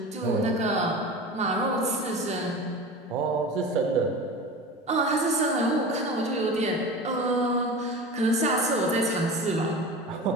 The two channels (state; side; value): normal; both; correlation 0.32